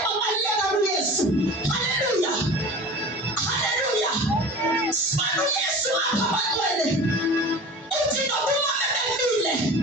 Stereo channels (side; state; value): both; normal; correlation 0.38